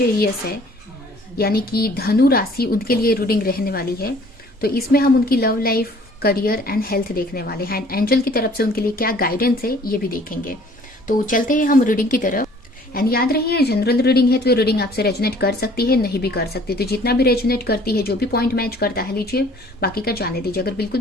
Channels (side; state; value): both; normal; correlation 0.54